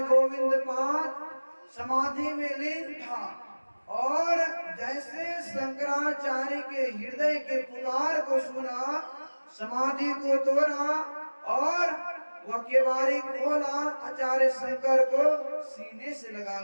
गोविंद पाद समाधि में लीन था और जैसे शंकराचार्य के हृदय के पुकार को सुना, समाधि को तोड़ा और वह केवाड़ी खोला, आचार्य शंकर को सीने से लगा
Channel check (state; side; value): inverted; both; correlation -1.00